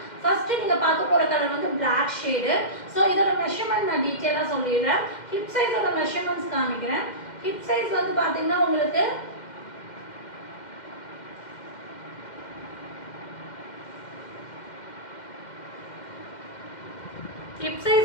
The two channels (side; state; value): right; late; 2.1 ms